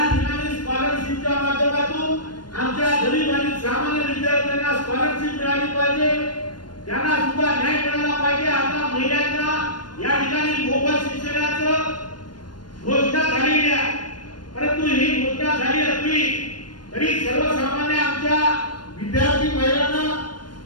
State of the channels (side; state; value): right; late; 0.71 ms